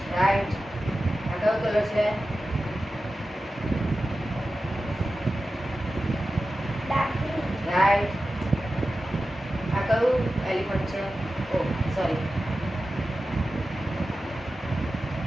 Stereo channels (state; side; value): normal; both; correlation 0.93